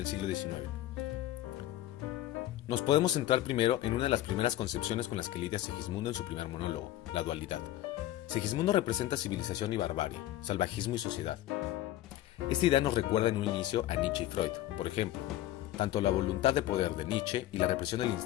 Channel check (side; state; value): right; quieter; 14.2 dB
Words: siglo XIX. Nos podemos centrar primero en una de las primeras concepciones con las que lidia Segismundo en su primer monólogo, la dualidad. Segismundo representa civilización y barbarie, salvajismo y sociedad. Esta idea nos recuerda en un inicio a Nietzsche y Freud, por ejemplo, tanto la voluntad de poder de Nietzsche y la represión del